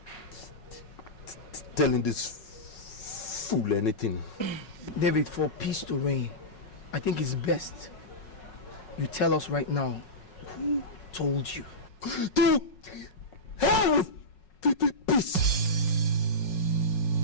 telling this fool anything. David, for peace to reign, I think it's best you tell us right now who told you. To hell with peace.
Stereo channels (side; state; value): right; late; 5.4 ms